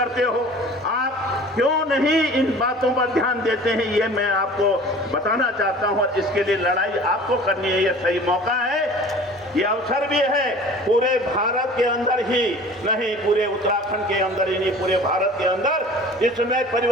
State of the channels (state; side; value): normal; both; correlation 0.44